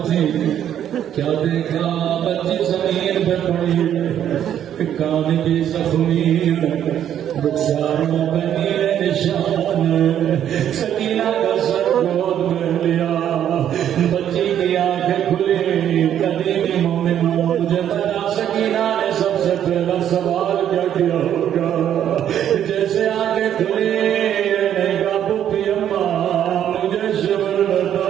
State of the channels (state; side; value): quieter; left; 10.2 dB